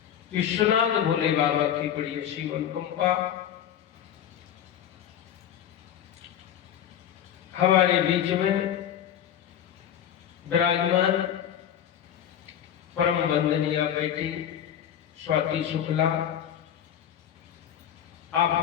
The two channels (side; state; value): right; quieter; 9.9 dB